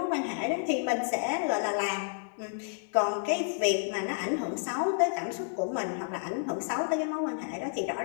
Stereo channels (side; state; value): right; silent; 57 dB below the other